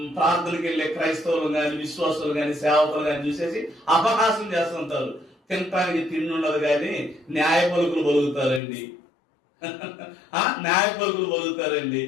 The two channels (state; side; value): drops out; right; at 8.6 s